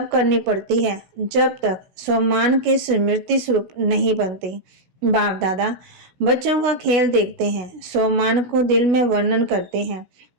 करनी पड़ती है जब तक सम्मान के स्मृति स्वरूप नहीं बनती। बाप दादा बच्चों का खेल देखते हैं, सम्मान को दिल में वर्णन करते हैं।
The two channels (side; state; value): left; late; 16 ms